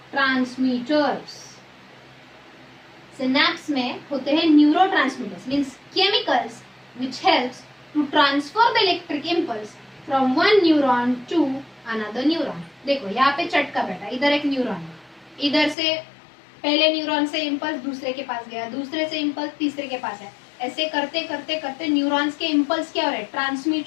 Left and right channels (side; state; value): right; drops out; at 15.8 s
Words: सिनेप्स में होते हैं neurotransmitters, means chemicals which helps to transfer the electric impulse from one neuron to another neuron. देखो यहाँ पे चटका बैठा, इधर एक न्यूरॉन है, इधर से पहले न्यूरॉन से इम्पल्स दूसरे के पास गया, दूसरे से इम्पल्स तीसरे के पास है. ऐसे करते करते करते न्यूरॉन्स के इम्पल्स क्या हो रहे हैं?